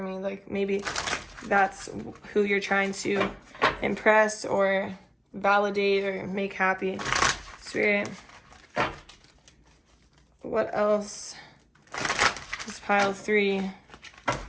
Like, maybe that's who you're trying to impress or validate or make happy. Spirit, what else does pile 3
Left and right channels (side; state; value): both; identical; correlation 1.00